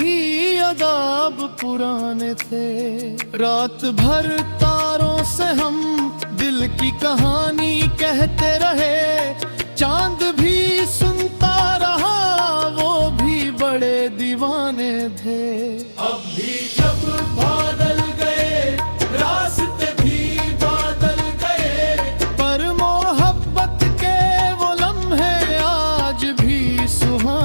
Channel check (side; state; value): both; inverted; correlation -1.00